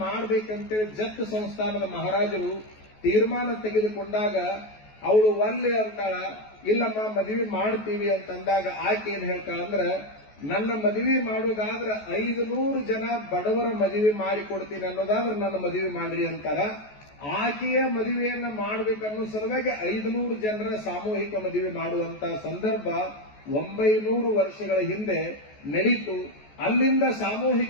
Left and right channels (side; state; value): right; late; 14 ms